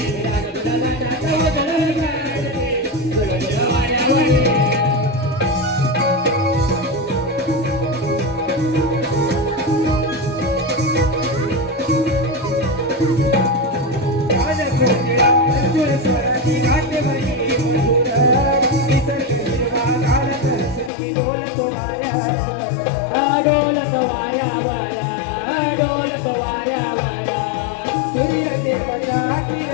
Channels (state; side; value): drops out; right; at 20.9 s